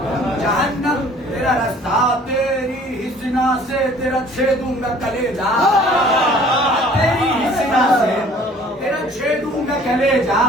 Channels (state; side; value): normal; both; correlation 0.52